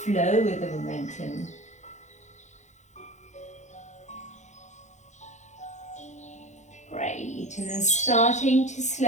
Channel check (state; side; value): late; right; 0.34 ms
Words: flow with the momentum. Great, and then starting to